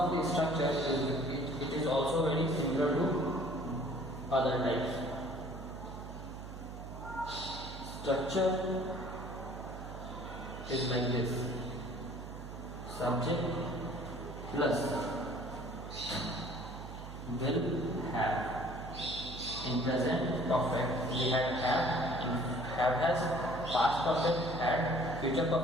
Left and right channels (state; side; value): noise; right; hum, 11 dB below the sound